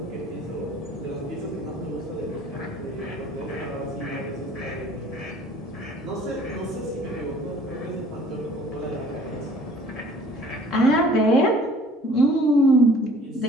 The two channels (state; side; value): normal; both; correlation 0.51